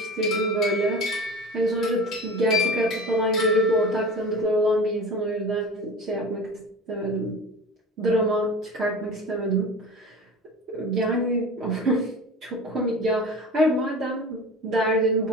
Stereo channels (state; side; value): normal; both; correlation 0.34